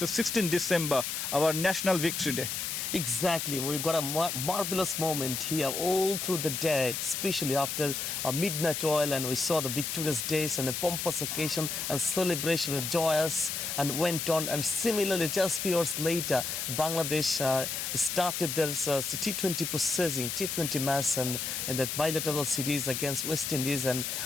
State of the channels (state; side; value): noise; left; hiss, 3 dB below the sound